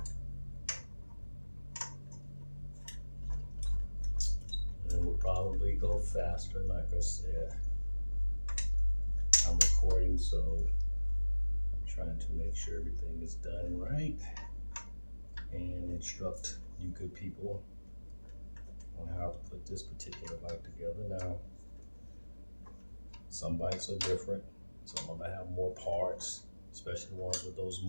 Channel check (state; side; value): inverted; both; correlation -1.00